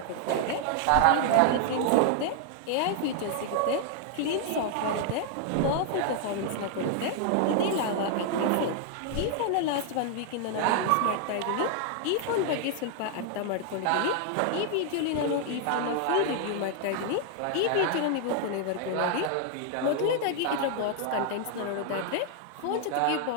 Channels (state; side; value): different; both; correlation 0.00